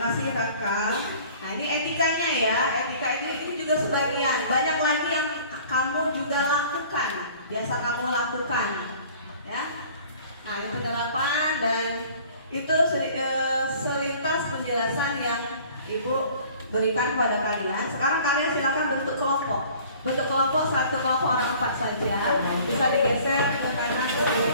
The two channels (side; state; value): both; inverted; correlation -0.50